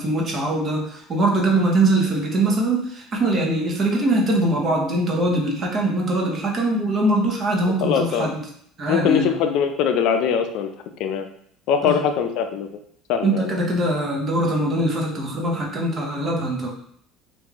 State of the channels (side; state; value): both; normal; correlation 0.44